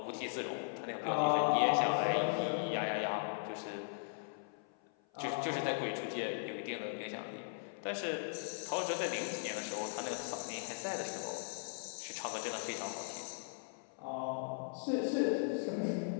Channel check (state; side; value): silent; right; 52 dB below the other